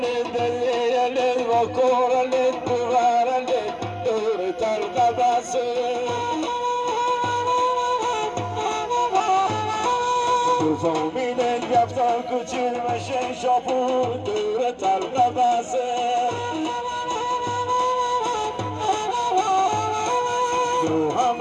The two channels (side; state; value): both; identical; correlation 1.00